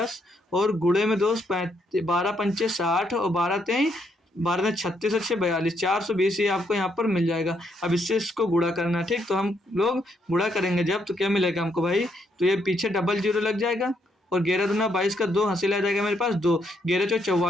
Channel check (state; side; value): normal; both; correlation 0.75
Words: और गुणे में दोस्त 12 पंचे 60 और 12 तेई 12 में 36 अच्छे 42, 420 ये आपको यहाँ पर मिल जाएगा। अब इससे इसको गुणा करना है, ठीक। तो हम लोग गुणा करेंगे जब, तो क्या मिलेगा हमको भाई, तो ये पीछे डबल जीरो लग जाएगा और 11 दूना 22 का 2 हासिल आ जाएगा मेरे पास 2, 11 चौ